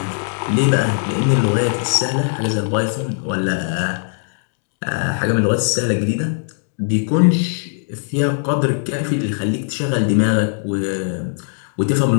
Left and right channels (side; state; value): right; silent; digital silence